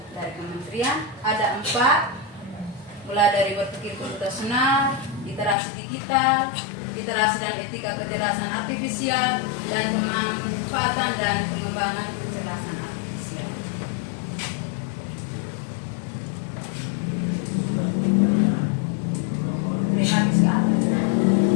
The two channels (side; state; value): right; drops out; at 5.6 s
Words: dari kementerian. Ada 4, mulai dari berpikir komputasional, literasi digital, literasi dan etika kecerdasan artifisial, dan pemanfaatan dan pengembangan kecerdasan artifisial.